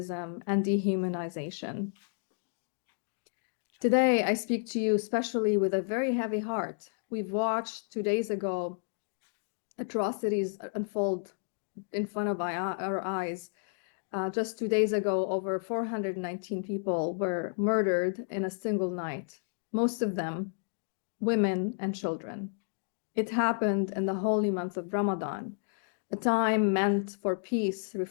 and dehumanization. Today, I speak to you especially with a very heavy heart. We've watched 2 days ago atrocities unfold in front of our eyes. Just 2 days ago, over 419 people were murdered in a single night, most of them women and children. It happened in the holy month of Ramadan, a time meant for peace,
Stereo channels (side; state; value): right; silent; digital silence